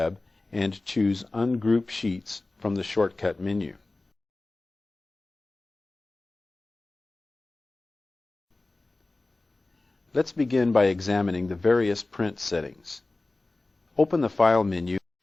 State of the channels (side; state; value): right; quieter; 3.1 dB